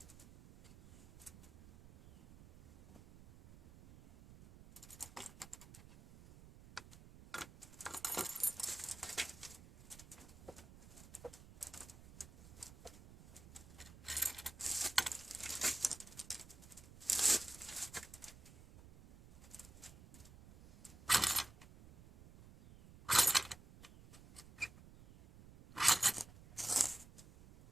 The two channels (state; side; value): noise; right; rumble, 19 dB below the sound